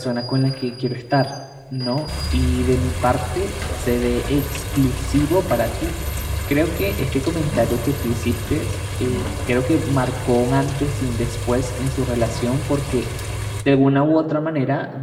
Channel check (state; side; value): identical; both; correlation 1.00